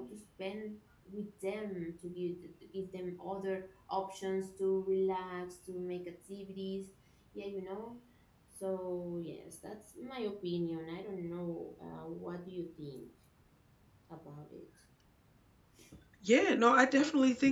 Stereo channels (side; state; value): both; identical; correlation 1.00